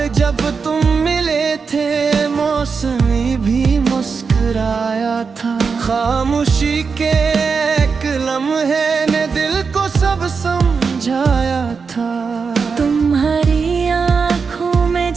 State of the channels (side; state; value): left; quieter; 5.3 dB